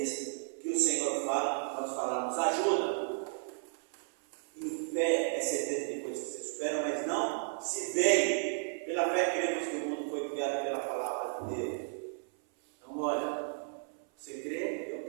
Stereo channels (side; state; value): left; silent; 55 dB below the other